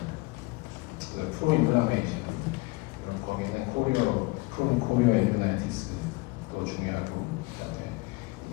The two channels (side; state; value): right; quieter; 24.5 dB